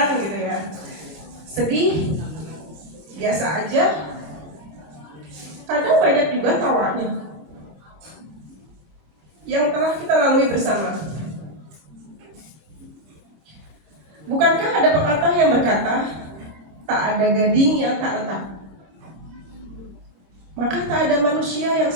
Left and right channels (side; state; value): left; late; 26 ms